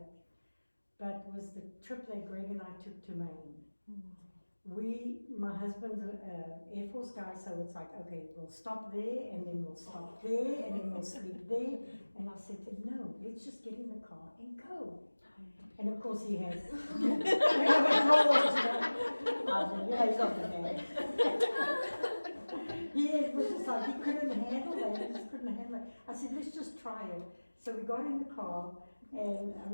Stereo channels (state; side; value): inverted; both; correlation -1.00